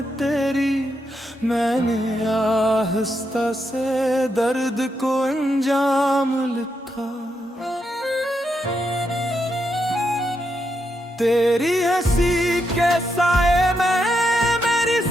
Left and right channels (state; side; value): normal; both; correlation 0.82